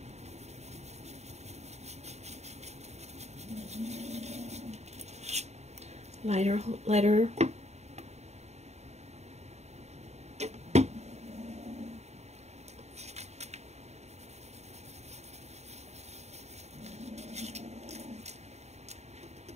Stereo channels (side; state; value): left; late; 0.32 ms